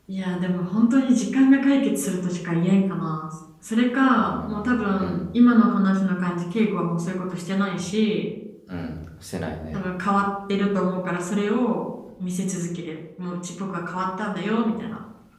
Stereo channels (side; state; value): both; identical; correlation 1.00